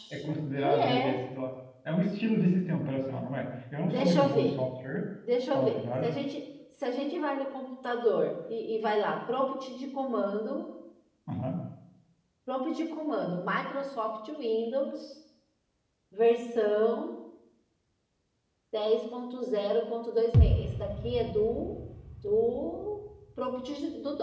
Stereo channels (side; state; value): both; identical; correlation 1.00